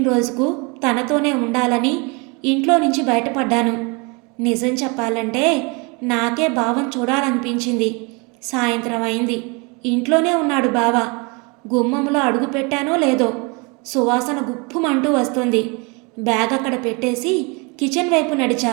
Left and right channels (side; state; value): left; quieter; 30.1 dB